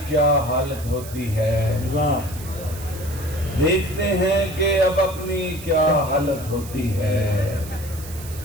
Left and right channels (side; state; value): right; noise; hiss, 15 dB below the sound